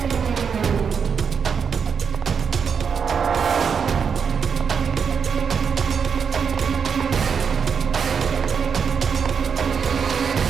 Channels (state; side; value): quieter; left; 6.4 dB